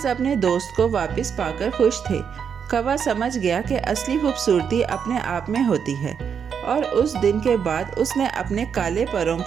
اپنے دوست کو واپس پا کر خوش تھے۔ کوا سمجھ گیا کہ اصلی خوبصورتی اپنے آپ میں ہوتی ہے، اور اس دن کے بعد اس نے اپنے کالے پروں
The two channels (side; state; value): left; quieter; 7.2 dB